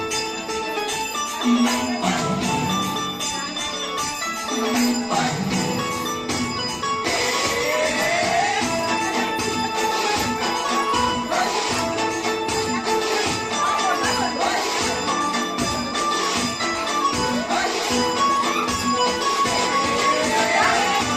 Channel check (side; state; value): both; identical; correlation 1.00